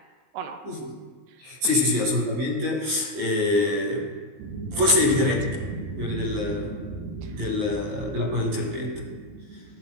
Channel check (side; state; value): left; late; 19 ms